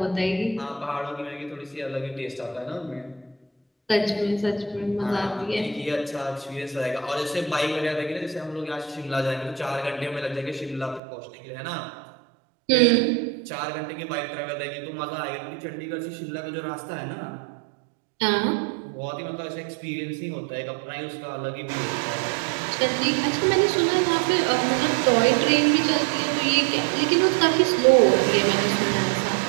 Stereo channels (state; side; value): drops out; left; at 11.0 s